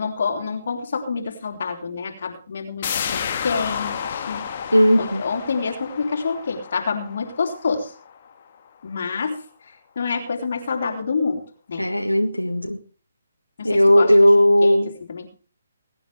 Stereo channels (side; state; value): both; inverted; correlation -0.94